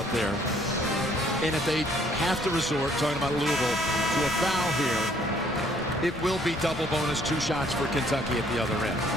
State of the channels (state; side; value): normal; both; correlation 0.63